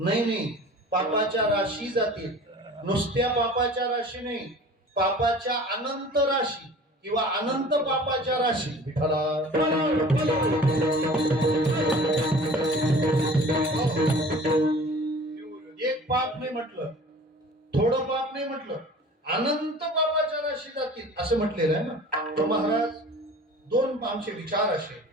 पापाच्या राशी जातील. नुसत्या पापाच्या राशी नाही, पापाच्या अनंत राशी किंवा अनंत पापाच्या राशी. विठ्ठला एक पाप नाही म्हटलं, थोडं पाप नाही म्हटलं, अनंत पापाच्या राशी जातील असं म्हटलेलं आहे ना. तर महाराज दोन आमचे विचार असे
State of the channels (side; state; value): both; normal; correlation 0.44